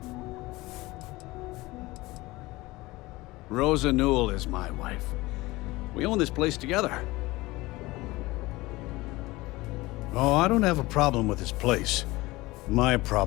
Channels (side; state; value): right; quieter; 20.4 dB